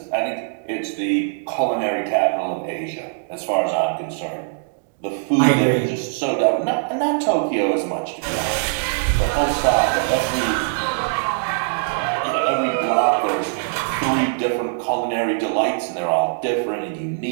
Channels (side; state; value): left; silent; digital silence